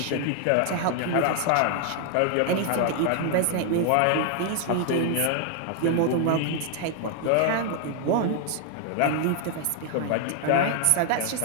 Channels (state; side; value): different; both; correlation 0.00